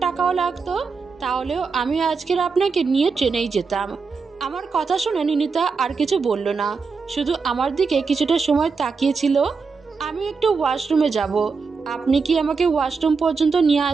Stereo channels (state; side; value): quieter; left; 4.9 dB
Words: টাকাও লাগতো, তাহলেও আমি আজকের আপনাকে নিয়ে ট্রেনেই যেতাম। আমার কথা শুনে নিনিতা আর কিছু বলল না, শুধু আমার দিকে কিছুটা সময় তাকিয়েছিল। আমি একটু ওয়াশরুমে যাব। আপনি কি আমাকে ওয়াশরুম পর্যন্ত নিয়ে